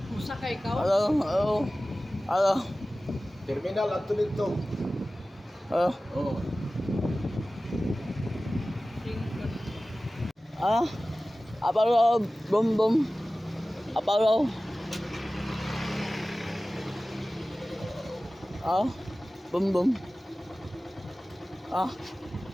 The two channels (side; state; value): both; normal; correlation 0.97